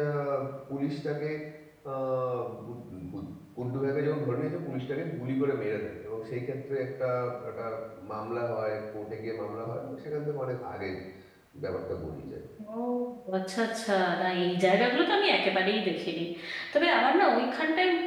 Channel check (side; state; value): both; identical; correlation 1.00